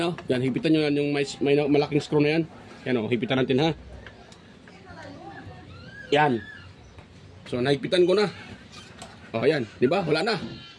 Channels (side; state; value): both; identical; correlation 1.00